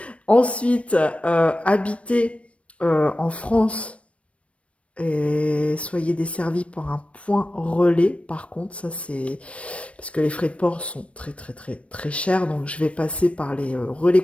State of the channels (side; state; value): right; late; 0.062 ms